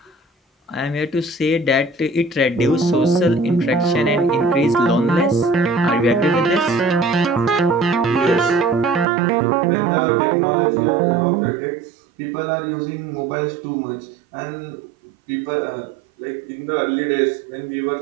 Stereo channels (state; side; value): drops out; left; at 9.1 s